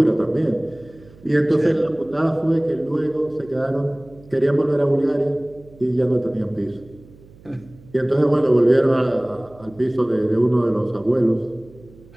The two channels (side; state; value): right; noise; hum, 24 dB below the sound